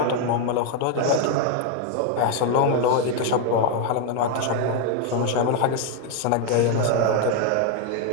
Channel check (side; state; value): both; different; correlation 0.01